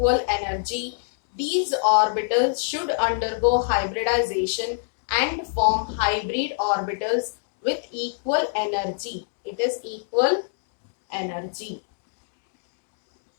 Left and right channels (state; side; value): silent; right; digital silence